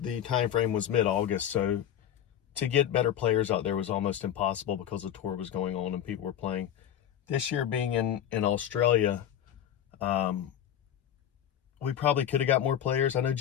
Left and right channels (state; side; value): quieter; right; 10.2 dB